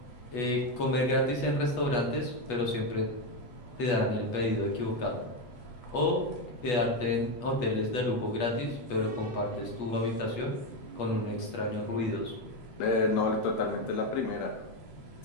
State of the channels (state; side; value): late; right; 8.3 ms